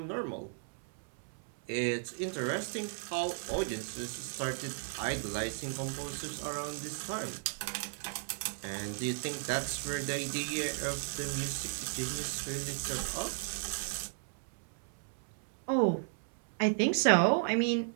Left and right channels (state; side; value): silent; left; 55 dB below the other